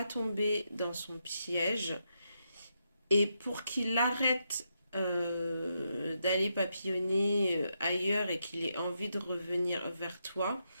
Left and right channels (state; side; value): inverted; both; correlation -0.82